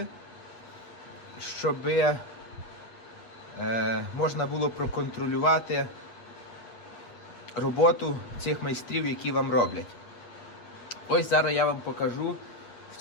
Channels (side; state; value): right; late; 8.2 ms